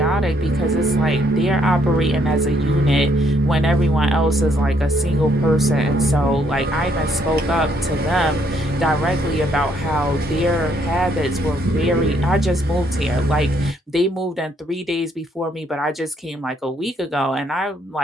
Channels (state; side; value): normal; both; correlation 0.70